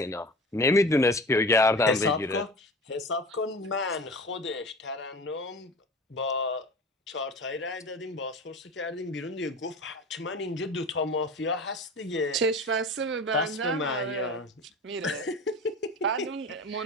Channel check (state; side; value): normal; both; correlation 0.35